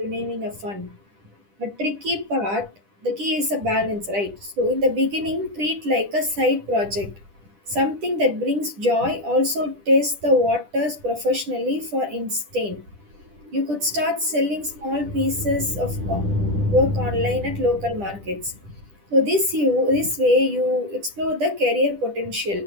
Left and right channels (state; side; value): late; left; 10 ms